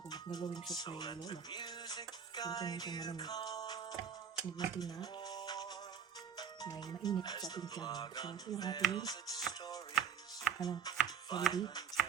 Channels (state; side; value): quieter; left; 7.3 dB